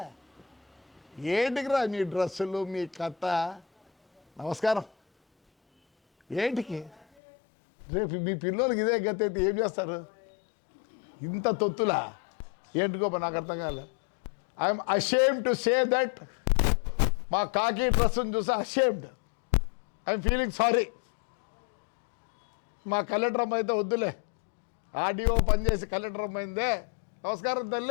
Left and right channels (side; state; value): right; drops out; at 7.0 s